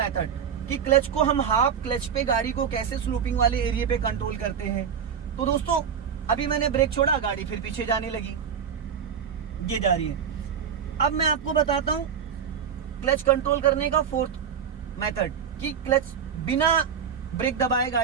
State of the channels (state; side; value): quieter; left; 7.5 dB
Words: कि क्लच को हम हाफ क्लच पे गाड़ी को कैसे स्लोपिंग वाले एरिया पे कंट्रोल करते हैं। तो दोस्तों अभी मैंने ब्रेक छोड़ा, गाड़ी फिर पीछे जाने लगी, ये जा रही है। अब मैं आपको बताता हूं क्लच कंट्रोल करने का फोर्थ मेथड कि क्लच बिना ब्रेक दबाए